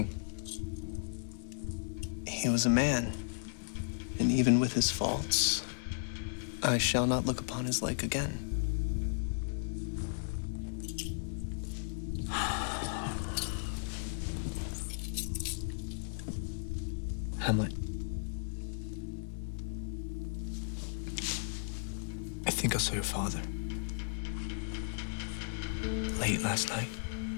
He was a man, and even with his faults, I shall not look upon his like again. Hamlet. I think I saw your father. Late last night.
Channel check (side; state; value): right; silent; 54 dB below the other